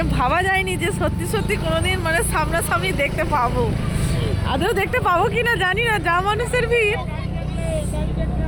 ভাবা যায়নি যে সত্যি সত্যি কোনোদিন মানে সামনাসামনি দেখতে পাবো। আদৌ দেখতে পাবো কি না জানি না, যা মানুষের ভিড়।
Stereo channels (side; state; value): both; identical; correlation 1.00